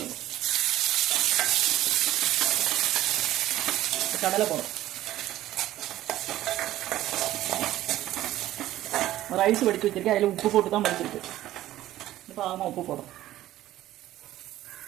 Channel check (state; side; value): quieter; left; 14.4 dB